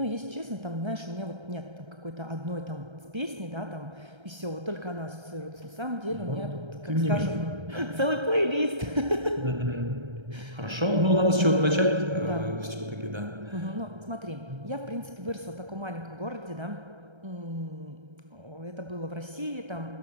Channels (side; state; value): left; late; 1.3 ms